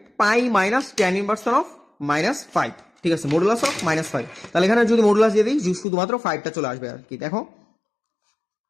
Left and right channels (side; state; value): right; drops out; at 5.9 s